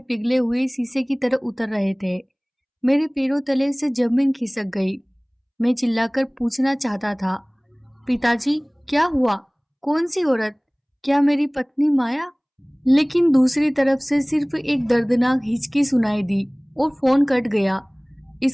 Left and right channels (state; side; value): identical; both; correlation 1.00